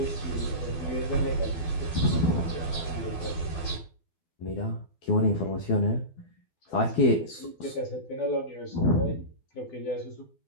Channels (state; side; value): late; right; 12 ms